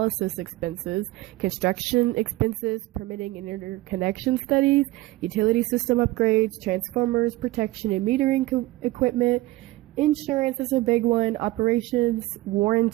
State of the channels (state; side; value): quieter; left; 18.8 dB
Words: expenses, construction expenses, permitting and interconnection studies, utility system upgrades, transformers, protection and metering equipment. Insurance is a big one, operations,